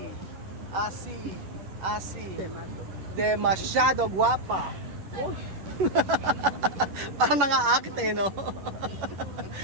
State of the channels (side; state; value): left; late; 11 ms